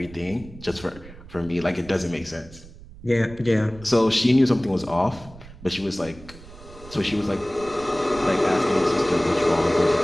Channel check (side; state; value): right; noise; rumble, 19 dB below the sound